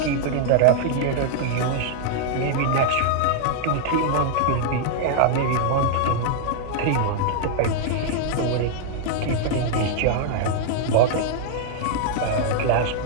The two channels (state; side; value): different; both; correlation -0.01